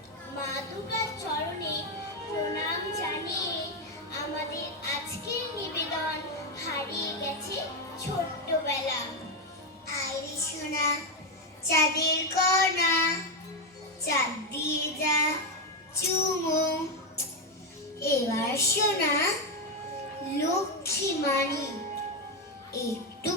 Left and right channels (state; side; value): normal; both; correlation 0.07